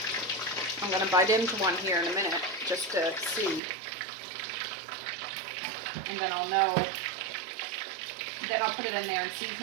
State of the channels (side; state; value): left; drops out; at 3.6 s